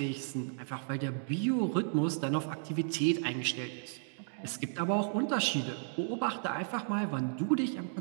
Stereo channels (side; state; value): left; silent; digital silence